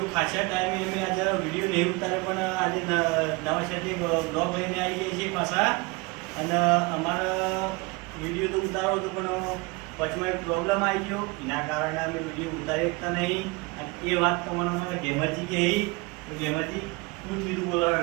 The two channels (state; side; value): quieter; left; 26.2 dB